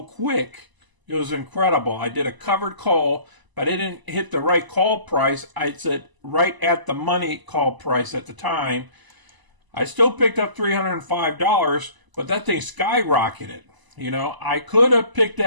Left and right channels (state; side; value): late; left; 1.0 ms